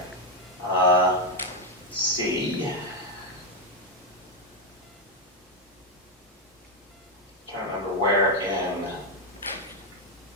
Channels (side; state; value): both; normal; correlation 0.05